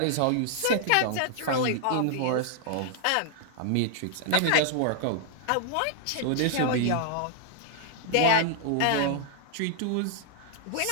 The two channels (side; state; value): both; different; correlation -0.01